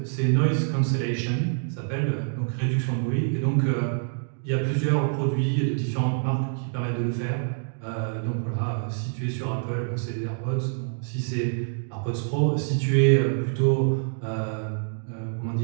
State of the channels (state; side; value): silent; left; digital silence